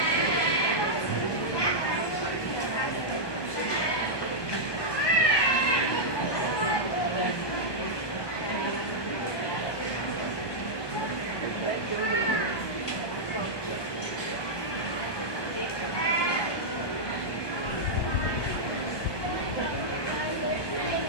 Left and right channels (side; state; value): right; late; 1.2 ms